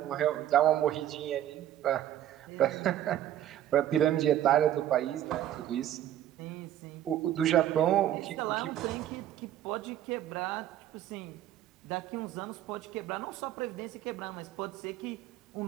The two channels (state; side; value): quieter; left; 12.0 dB